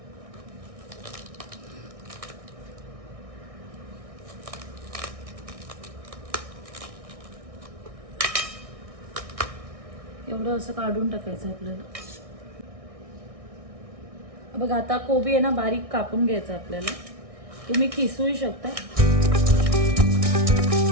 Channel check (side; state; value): left; late; 1.6 ms